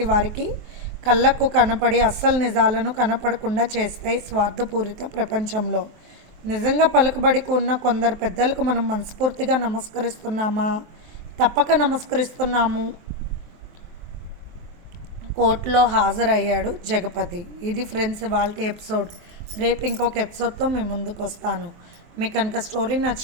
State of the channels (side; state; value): left; late; 23 ms